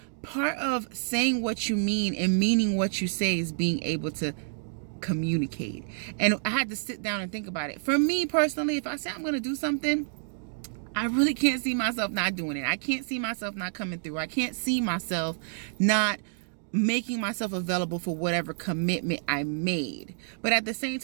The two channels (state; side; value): silent; left; digital silence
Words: part of saying what you mean and meaning what you say is being able to communicate. And I had to sit down and think about it. For me personally, if I say I'm going to do something, I really can't see myself not doing it. I can't see myself not coming through. I can't see myself not making myself available for whatever commitment I made. But at the same